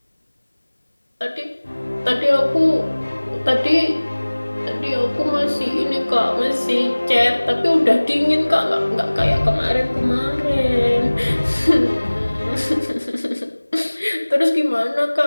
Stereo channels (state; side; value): inverted; both; correlation -1.00